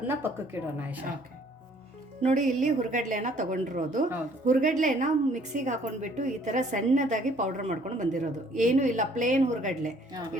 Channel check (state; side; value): normal; both; correlation 0.60